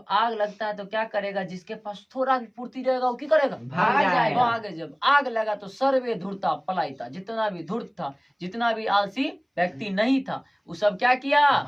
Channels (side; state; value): both; identical; correlation 1.00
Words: आग लगता है तो क्या करेगा? जिसके पास थोड़ा भी पूर्ति रहेगा वो क्या करेगा? भाग जाएगा। भागे। जब आग लगा तो सर्वे धूर्ता पलायिता, जितना भी धूर्त था, जितना भी आलसी व्यक्ति नहीं था, वो सब क्या किया?